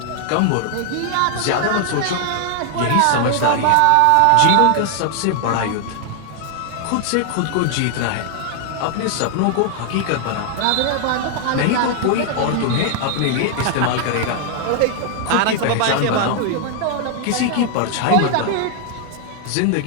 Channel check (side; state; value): both; different; correlation 0.00